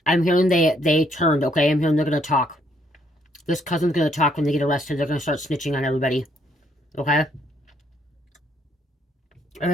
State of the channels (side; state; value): both; normal; correlation 0.70